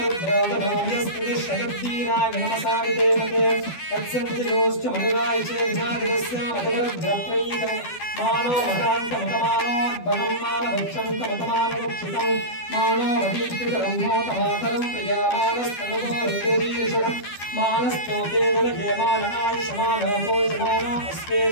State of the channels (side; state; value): right; late; 12 ms